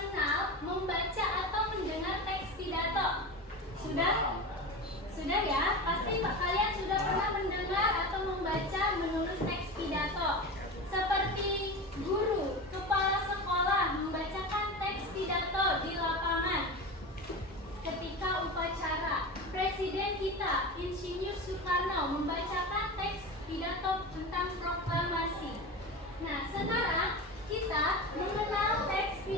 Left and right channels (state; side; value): normal; both; correlation 0.26